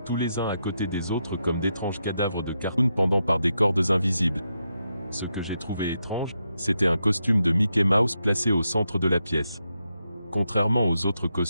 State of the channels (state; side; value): inverted; both; correlation -0.85